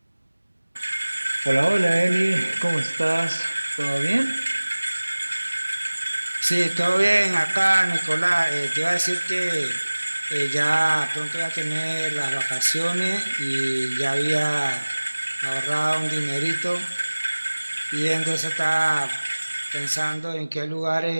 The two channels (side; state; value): both; inverted; correlation -1.00